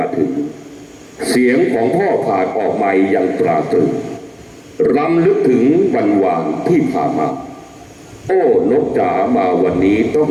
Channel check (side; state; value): both; identical; correlation 1.00